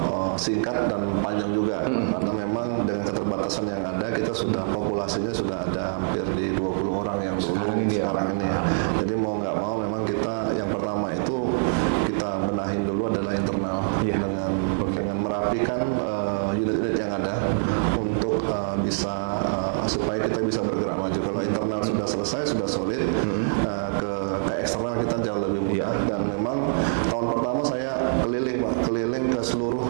singkat dan panjang juga, karena memang dengan keterbatasan yang ada kita sudah populasinya sudah ada hampir di 20 orang yang sekarang ini ya. Jadi mau nggak mau memang kita yang pertama itu kita benahin dulu adalah internal dengan merapikan unit-unit yang ada untuk bisa supaya kita bisa bergerak maju. Kalau internal sudah selesai, sudah solid, ke eksternal kita jauh lebih mudah. Dan memang tahun pertama saya keliling ke seluruh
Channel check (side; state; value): left; silent; digital silence